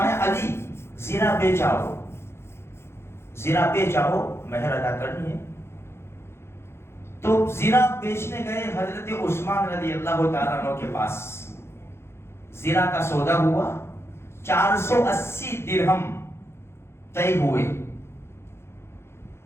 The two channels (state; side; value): late; right; 0.12 ms